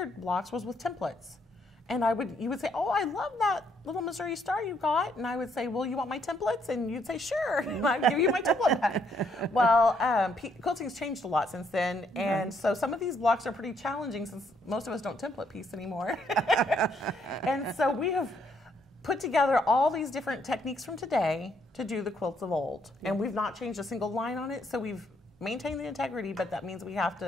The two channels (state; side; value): normal; both; correlation 0.71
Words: blocks was with templates. And you would say, oh, I love that little Missouri star you got. And I would say, well, you want my templates? And you'd say, sure. And I'd give you my template back. Well, quilting's changed a lot since then. And so some of these blocks are pretty challenging since most of us don't template piece anymore. And so we have put together all these different techniques from today to do the quilts of old. And we've not changed a single line on it. So we've maintained the integrity, but that means we have